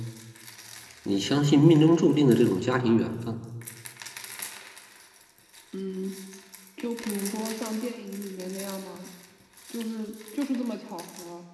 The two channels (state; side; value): identical; both; correlation 1.00